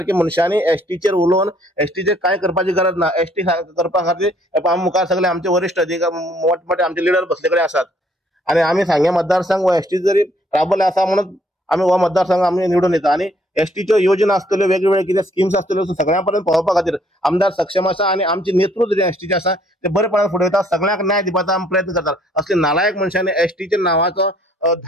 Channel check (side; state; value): both; normal; correlation 0.64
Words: मनशांनी एसटीचेर उलोवन एसटीचेर कांय करपाची गरज ना। एसटी करपा खातीर आमी मुखार सगळे आमचे वरिश्ठ अधिकारी मोठमोठे आमचे लिडर बसले कडेन आसात आनी आमी सांगे मतदारसंघ वा एसटी जरी राबले आसा म्हणून आमी हो मतदारसंघ आमी निवडून येता आनी एसटीच्यो योजना आसतल्यो वेगवेगळ्यो कितें स्किम्स आसतल्यो सगळ्या पर्यंत पावोवपा खातीर आमदार सक्षम आसा आनी आमचे नेतृत्व जे एसटीचे आसा ते बरेपणान फुडें वयता सगळ्यांक न्याय दिवपाचो आमी प्रयत्न करतात। असले नालायक मनशांनी एसटीच्या नांवाचो